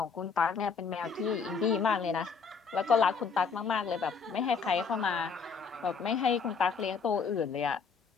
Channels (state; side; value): quieter; right; 5.5 dB